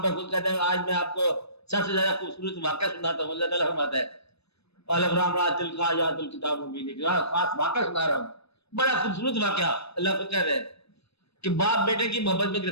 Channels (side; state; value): right; late; 0.78 ms